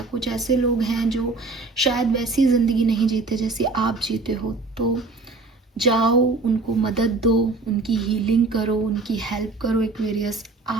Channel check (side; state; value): left; quieter; 3.7 dB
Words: कुछ ऐसे लोग हैं जो शायद वैसी ज़िंदगी नहीं जीते जैसी आप जीते हो, तो जाओ उनको मदद दो, उनकी हीलिंग करो, उनकी हेल्प करो एक्वेरियस।